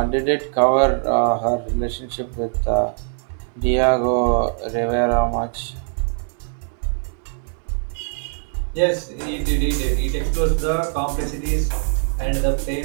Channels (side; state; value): left; silent; 64 dB below the other